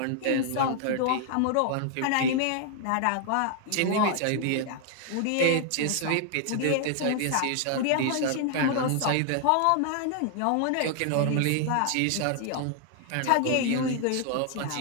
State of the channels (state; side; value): different; both; correlation 0.00